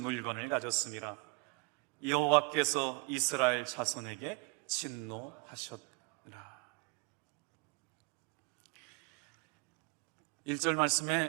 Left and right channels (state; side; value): quieter; left; 28.5 dB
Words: 물건을 가졌습니다. 여호와께서 이스라엘 자손에게 진노하셨더라. 1절